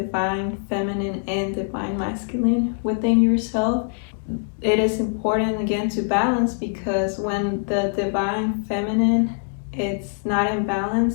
feminine and divine masculine within yourself. It is important again to balance, because when the divine feminine it's not in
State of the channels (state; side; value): silent; right; 63 dB below the other